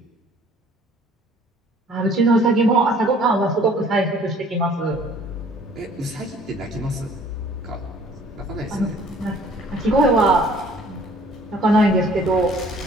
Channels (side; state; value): both; normal; correlation 0.54